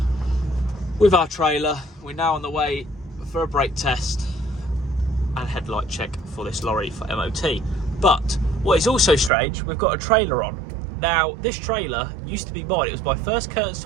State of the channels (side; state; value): left; drops out; at 9.3 s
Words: with our trailer. We're now on the way for a brake test and headlight check for this lorry for MOT. But what is also strange, we've got a trailer on. Now, this trailer used to be mine. It was my first curtain